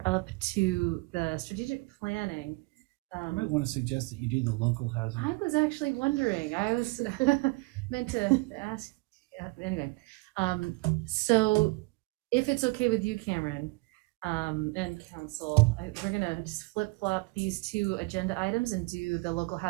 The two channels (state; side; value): quieter; left; 25.8 dB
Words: up to the strategic planning. I might want to suggest that you do the local housing. I was actually wondering, I was meant to ask, anyway. So if it's okay with you, Cameron, and council, we're gonna just flip-flop these two agenda items and do the local